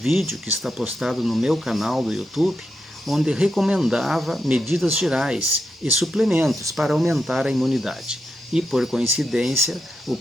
que está postado no meu canal do YouTube, onde recomendava medidas gerais e suplementos para aumentar a imunidade. E, por coincidência, o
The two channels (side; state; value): both; normal; correlation 0.85